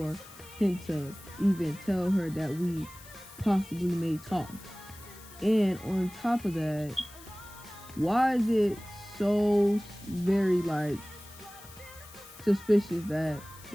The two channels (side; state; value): left; noise; hiss, 19 dB below the sound